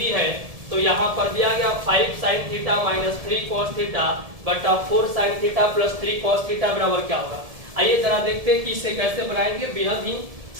है, तो यहाँ पर दिया गया 5 sin theta minus 3 cos theta बटा 4 sin theta plus 3 cos theta बराबर क्या होगा। आइए जरा देखते हैं कि इसे कैसे बनाएंगे। बेहद ही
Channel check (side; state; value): left; late; 1.7 ms